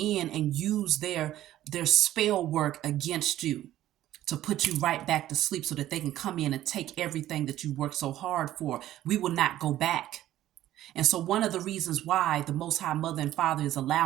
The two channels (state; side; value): quieter; left; 13.5 dB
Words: and use their spell work against you to put you right back to sleep, so that they can come in and take everything that you worked so hard for. We will not go back. And so one of the reasons why the Most High Mother and Father is